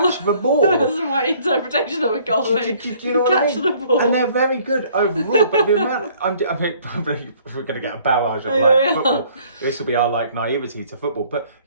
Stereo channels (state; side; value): inverted; both; correlation -0.59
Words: my interpretation of a goalie. Do you know what I mean? The ball. And they're very good overall, but the amount we're going to get a barrage of football. This will be our naivety to football. But